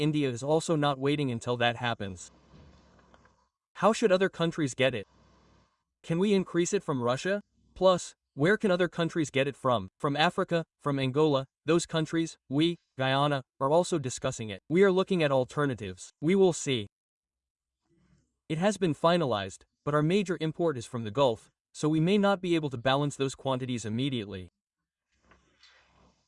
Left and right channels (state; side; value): identical; both; correlation 1.00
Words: is also not waiting until that happens. How should other countries get it? Can we increase it from Russia? Plus, where can other countries get it from? From Africa, from Angola, those countries, we, Guyana, are also discussing it. We are looking at alternatives. We will see. It has been finalized, but our major import is from the Gulf, so we may not be able to balance those quantities immediately.